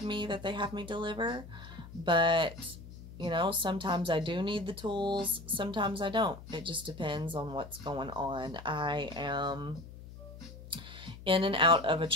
me, that they have me deliver. But you know, sometimes I do need the tools, sometimes I don't. It just depends on what's going on. I am in and out of a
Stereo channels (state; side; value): noise; left; hum, 15 dB below the sound